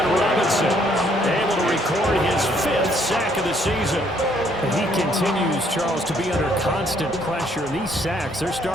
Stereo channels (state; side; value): normal; both; correlation 0.67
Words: Robinson able to record his 5th sack of the season. And he continues, Charles, to be under constant pressure. And these sacks, they're